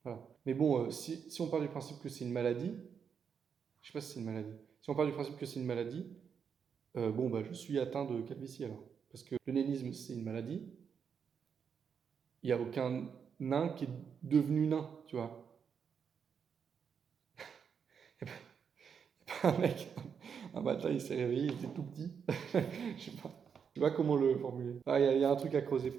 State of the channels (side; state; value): left; quieter; 6.9 dB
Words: Voilà. Mais bon, si on part du principe que c'est une maladie, je sais pas si c'est une maladie. Si on part du principe que c'est une maladie, je suis atteint de calvitie alors. Parce que le nénisme, c'est une maladie. Il n'y a aucun nain qui est devenu nain, tu vois. Il n'y a pas un mec, un matin, il s'est réveillé, il était tout petit. Je sais pas comment le formuler. Il y a un truc à creuser,